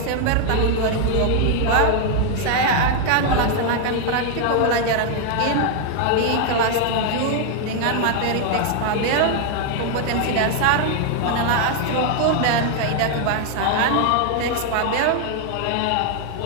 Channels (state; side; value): different; both; correlation 0.00